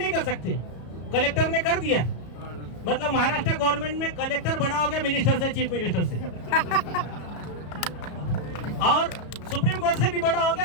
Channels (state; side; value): late; right; 34 ms